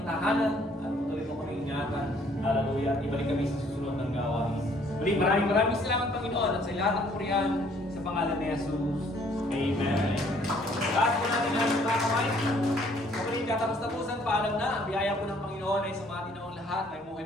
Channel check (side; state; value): both; normal; correlation 0.61